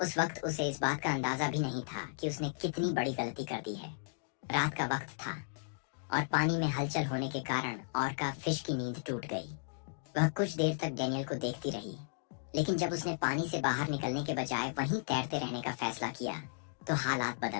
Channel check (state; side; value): silent; right; digital silence